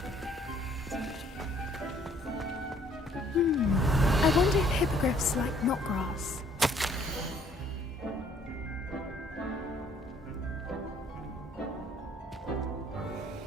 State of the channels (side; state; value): both; normal; correlation 0.61